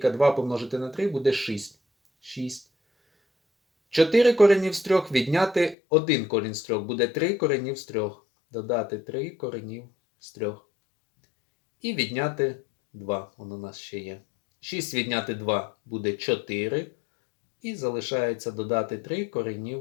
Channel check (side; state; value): right; drops out; at 5.8 s